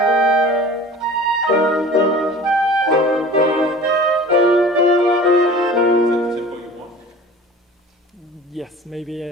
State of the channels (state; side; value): normal; both; correlation 0.41